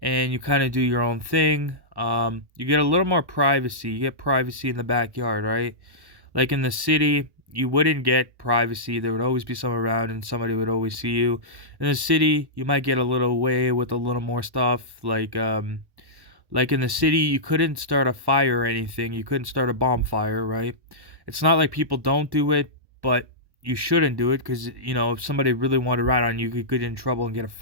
and you kind of do your own thing. You get a little more privacy. You get privacy in the backyard, right? Like in the city, you wouldn't get privacy. There would always be someone around and somebody would always see you. In the city, you might get a little away with a little more stuff. Like in the city, you couldn't start a fire or anything. You couldn't start a bonfire, right? It's not like people don't do it, but you shouldn't do it because, if somebody really wanted to ride on you, you could get in trouble and get a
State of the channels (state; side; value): late; left; 1.1 ms